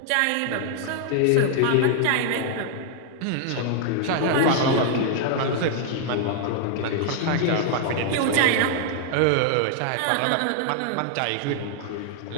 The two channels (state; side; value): different; both; correlation 0.00